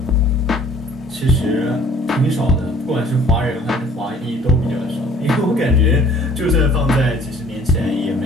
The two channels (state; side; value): normal; both; correlation 0.54